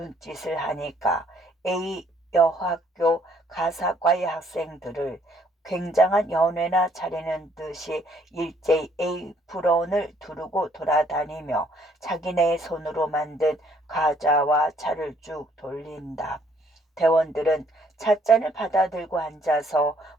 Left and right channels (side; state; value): both; normal; correlation 0.65